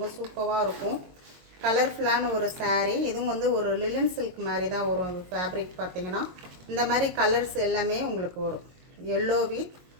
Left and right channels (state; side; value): late; left; 22 ms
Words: சூப்பராக இருக்கும். கலர்ஃபுல்லான ஒரு சாரீ. இதுவும் வந்து ஒரு லிலன் சில்க் மாதிரி தான் வரும். ஃபேப்ரிக் பார்த்திங்கன்னா இந்த மாதிரி கலர்ஸ் எல்லாமே உங்களுக்கு வரும். எல்லோ வித்